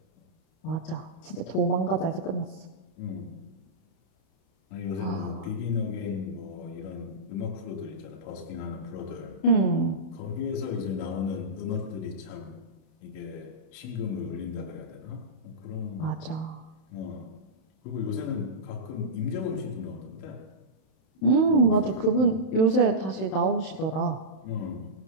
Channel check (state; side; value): late; right; 31 ms